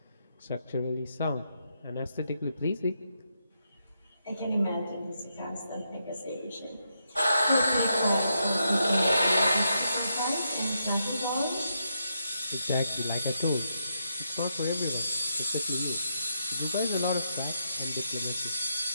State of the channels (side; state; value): both; inverted; correlation -0.82